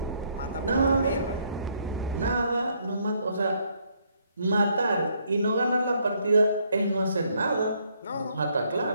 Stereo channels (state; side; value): inverted; both; correlation -0.70